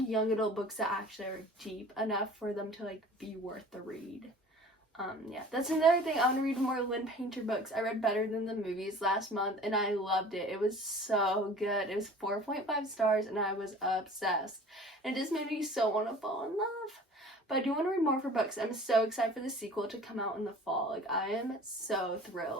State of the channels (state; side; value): normal; both; correlation 0.45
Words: young adult books that actually are deep enough for them to like be worth the read. Yeah, that's another thing. I want to read more Lynn Painter books. I read Better Than the Movies last month and I loved it. It was so good. It was 4.5 stars and I was obsessed. And it just made me so want to fall in love. But I do want to read more of her books. I'm so excited for the sequel to come out in the fall. Like I am so